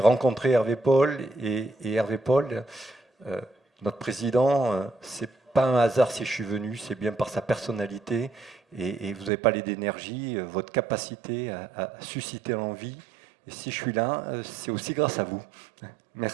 Hervé Paul et Hervé Paul, euh, notre président, c'est pas un hasard si je suis venu, c'est bien par sa personnalité et vous avez parlé d'énergie, votre capacité à susciter l'envie. Et si je suis là, c'est aussi grâce à vous.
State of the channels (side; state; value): left; drops out; at 9.3 s